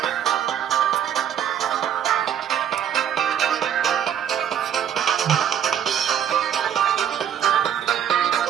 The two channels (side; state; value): left; quieter; 9.4 dB